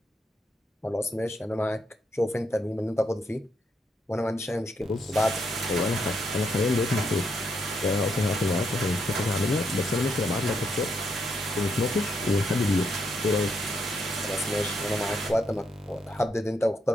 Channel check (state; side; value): normal; both; correlation 0.78